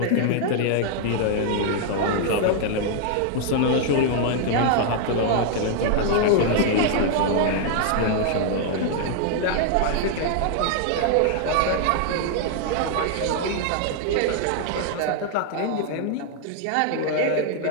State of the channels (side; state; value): both; different; correlation 0.00